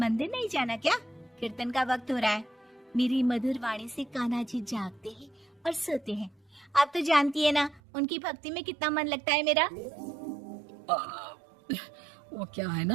नहीं जाना क्या? कीर्तन का वक्त हो रहा है। मेरी मधुर वाणी से कान्हा जी जागते हैं और सोते हैं। आप तो जानती है ना उनकी भक्ति में कितना मन लगता है मेरा। वो क्या है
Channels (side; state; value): left; drops out; at 7.8 s